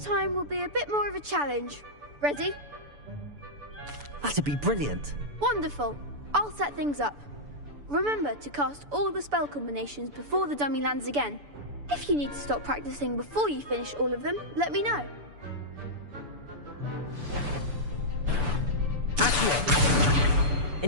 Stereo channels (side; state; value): left; late; 6.9 ms